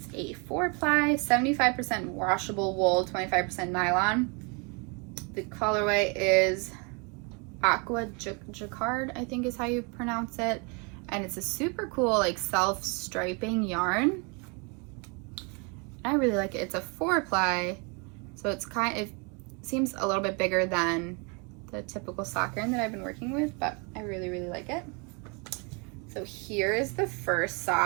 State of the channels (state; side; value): quieter; left; 32.8 dB